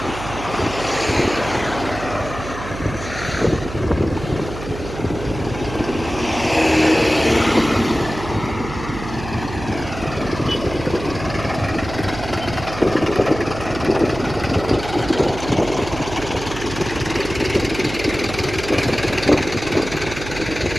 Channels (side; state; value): right; noise; hum, 10 dB below the sound